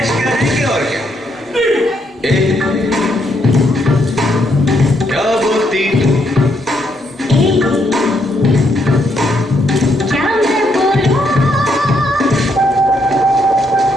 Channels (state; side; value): normal; both; correlation 0.75